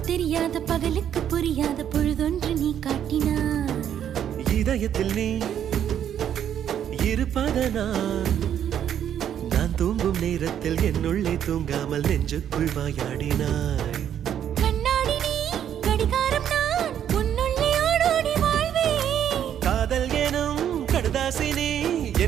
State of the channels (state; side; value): quieter; left; 9.7 dB